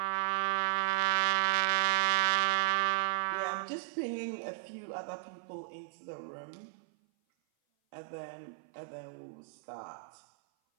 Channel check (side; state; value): left; silent; 55 dB below the other